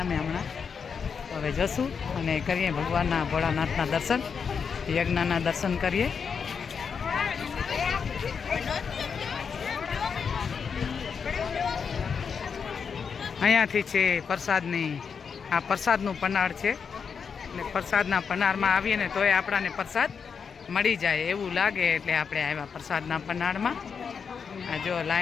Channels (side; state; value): right; quieter; 6.2 dB